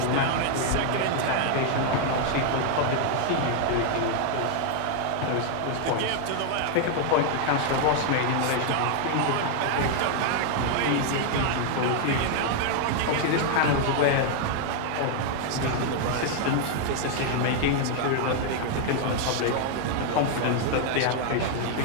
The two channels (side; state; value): both; different; correlation 0.00